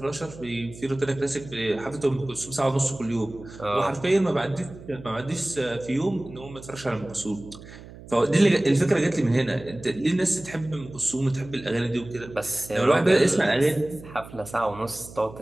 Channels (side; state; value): right; noise; hum, 17 dB below the sound